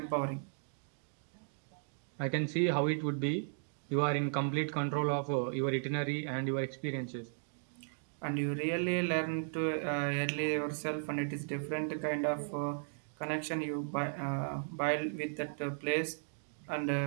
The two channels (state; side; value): silent; left; digital silence